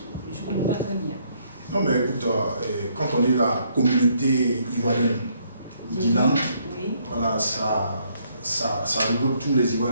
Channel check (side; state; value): both; inverted; correlation -0.69